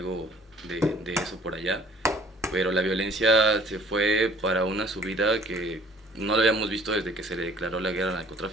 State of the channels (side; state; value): both; normal; correlation 0.54